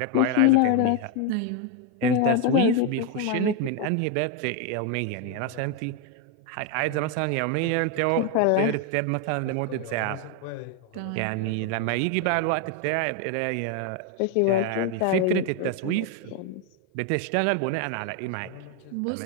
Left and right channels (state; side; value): different; both; correlation 0.01